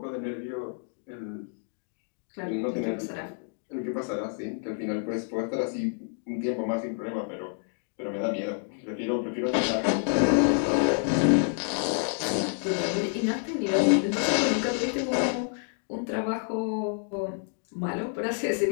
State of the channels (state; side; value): silent; right; 58 dB below the other